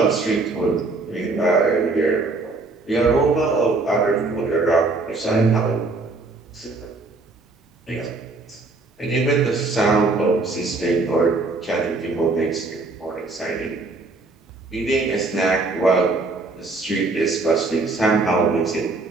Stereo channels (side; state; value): left; quieter; 3.5 dB